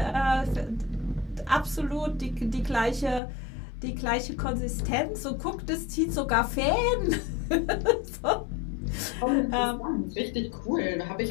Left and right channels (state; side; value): drops out; right; at 3.2 s